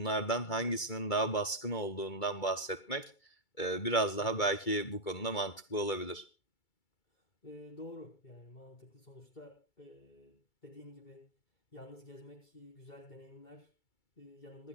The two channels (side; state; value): right; late; 2.3 ms